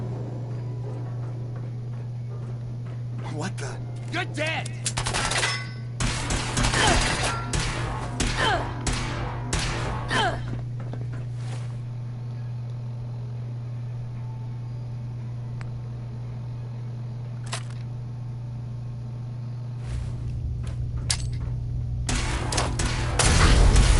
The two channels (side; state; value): both; identical; correlation 1.00